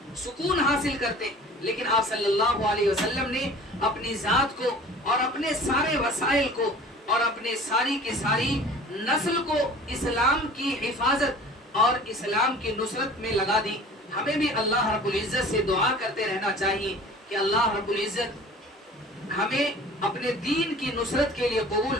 سکون حاصل کرتے ہیں، لیکن آپ صلی اللہ علیہ وسلم نے اپنی ذات کو اور اپنے سارے وسائل کو اور اپنے ساری کی ساری نسل کو اسلام کی حفاظت اور اسلام کی نصرت میں لگا دی۔ ہمیں بھی اللہ رب العزت سے دعا کرتے رہنا چاہیے کہ اللہ رب العزت ہمیں اپنے دین کی نصرت کے لیے قبول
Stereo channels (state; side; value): normal; both; correlation 0.44